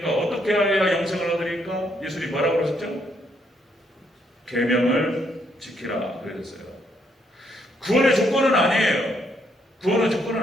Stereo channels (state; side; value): normal; both; correlation 0.73